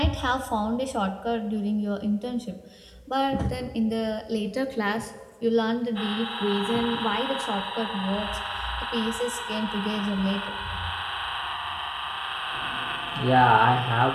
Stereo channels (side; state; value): both; identical; correlation 1.00